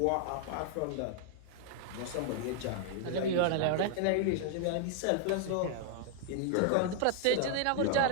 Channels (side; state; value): both; different; correlation 0.00